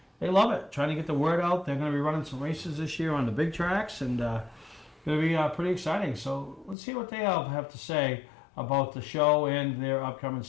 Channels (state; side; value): drops out; right; at 6.8 s